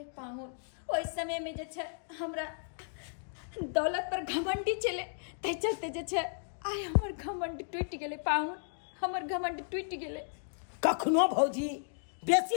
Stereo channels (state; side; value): silent; right; digital silence